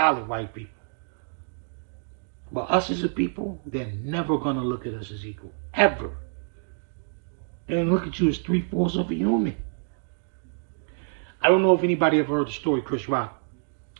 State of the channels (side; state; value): left; silent; digital silence